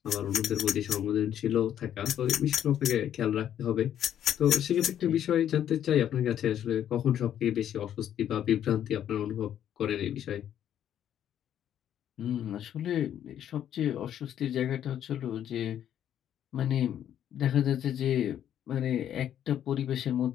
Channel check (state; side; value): quieter; right; 10.3 dB